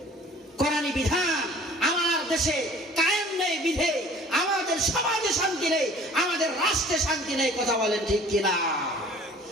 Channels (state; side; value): normal; both; correlation 0.49